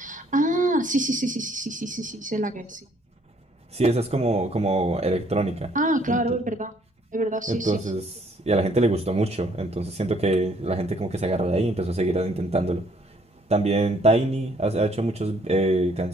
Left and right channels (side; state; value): both; normal; correlation 0.64